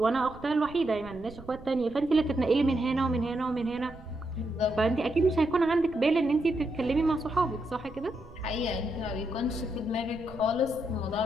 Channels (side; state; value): right; noise; rumble, 18 dB below the sound